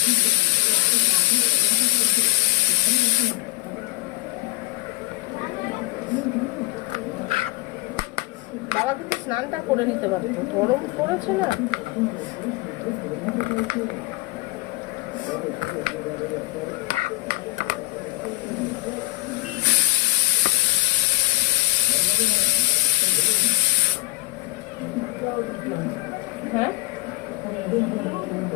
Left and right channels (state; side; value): quieter; right; 23.4 dB